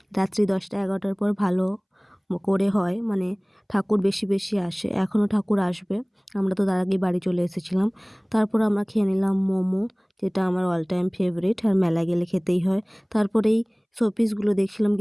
রাত্রি 10টা-11টার পর ভালো করে হয়, মানে ঠাকুর বেশি বেশি আসে। এখনও ঠাকুর আসবে, আমরা তো তার আগেই বাড়ি চলে এসেছিলাম। তারপর আমরা খেয়ে নিলাম মোমো, যেটা আমার অল টাইম ফেভারিট, আর মেলায় গেলে খেতেই হয়। তারপরে এই শোপিসগুলো দেখছিলাম,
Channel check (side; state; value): both; identical; correlation 1.00